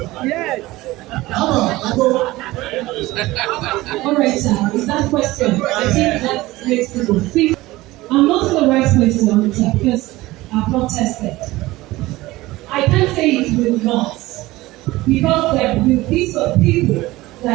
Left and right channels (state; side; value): quieter; left; 18.7 dB